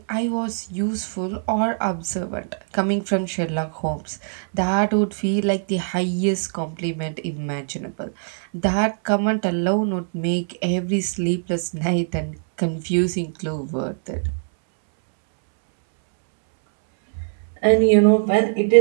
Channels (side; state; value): left; silent; 64 dB below the other